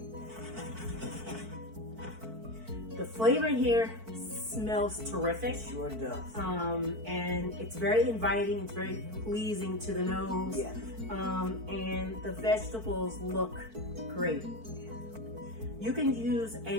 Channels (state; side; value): late; left; 4.5 ms